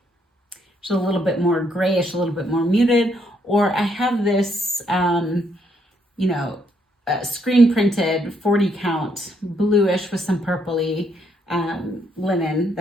is a little bit more grayish, a little bit more muted, or I have this, you know, screen printed 40 count bluish with some purpley linen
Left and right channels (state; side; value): normal; both; correlation 0.73